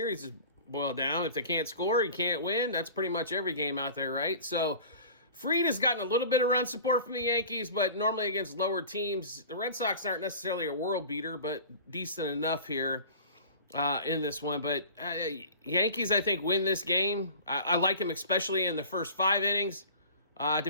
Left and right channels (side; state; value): both; inverted; correlation -0.41